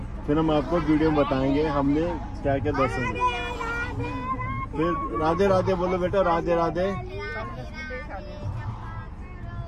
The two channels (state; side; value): identical; both; correlation 1.00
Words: फिर हम आपको वीडियो में बताएंगे हमने क्या क्या दर्शन किए। फिर राधे राधे बोलो बेटा, राधे राधे।